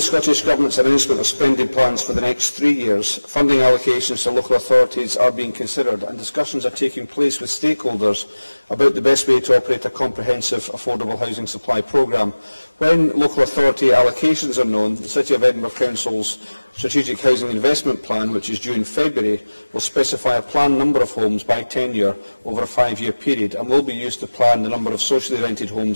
Scottish Government's announcement of spending plans for the next 3 years, funding allocations to local authorities are being considered and discussions are taking place with stakeholders about the best way to operate a comprehensive affordable housing supply programme. When local authority allocations are known, the City of Edinburgh Council's Strategic Housing Investment Plan, which is due in February, will specify a planned number of homes by tenure over a 5-year period and will be used to plan the number of socially rented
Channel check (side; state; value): both; inverted; correlation -1.00